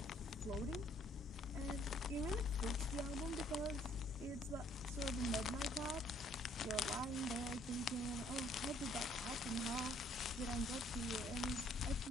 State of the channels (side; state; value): both; normal; correlation 0.64